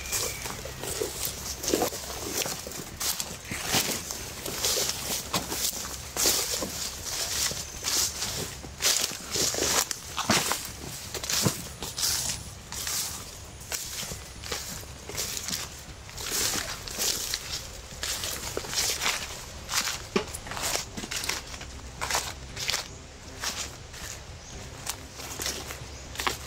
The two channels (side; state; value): both; identical; correlation 1.00